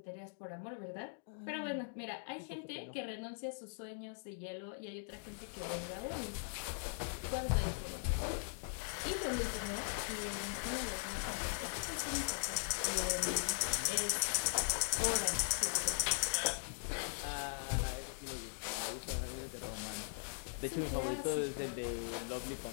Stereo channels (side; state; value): right; silent; digital silence